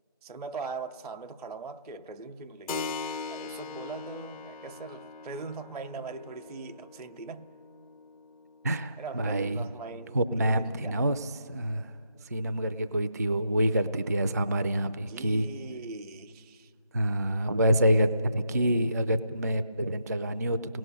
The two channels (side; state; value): both; inverted; correlation -0.75